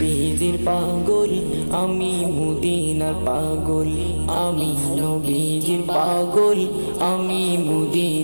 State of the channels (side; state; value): both; inverted; correlation -1.00